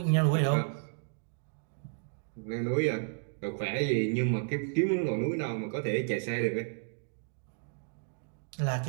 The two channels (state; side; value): silent; left; 56 dB below the other